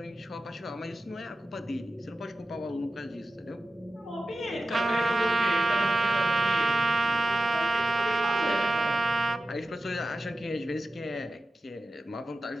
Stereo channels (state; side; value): normal; both; correlation 0.92